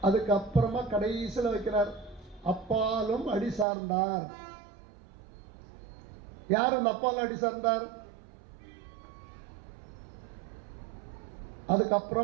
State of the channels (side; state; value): left; drops out; at 3.7 s